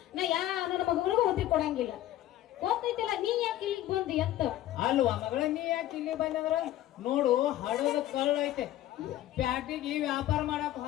ನಾ ಯಾರ ನನ್ನ ಮಗಳಿಗೂ ಉದ್ರಿ ಕೊಡಂಗಿಲ್ಲ ಗೊತ್ತೈತಿಲ್ಲ ನೀ ಯಾಕೆ ಇಲ್ಲಿಗೆ ಬಂದಿ ಅಂತ ಅಲ್ವಾ ಮಗಳ ನೀ ಯಾಕೆ ಇಲ್ಲಿ ಬಂದಂದ್ರ ನೋಡು ಹಡದ ಕಳ್ಳ ಐತೆ ಪ್ಯಾಟಿಗೆ ವ್ಯಾಪಾರ ಮಾಡಕ್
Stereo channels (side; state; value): right; quieter; 13.7 dB